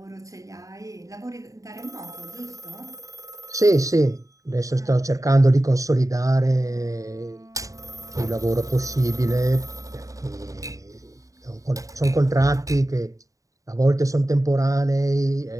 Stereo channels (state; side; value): late; left; 0.16 ms